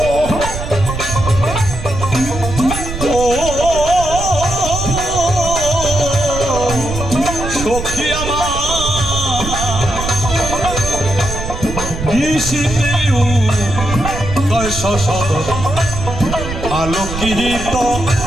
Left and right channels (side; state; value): right; noise; rumble, 7 dB below the sound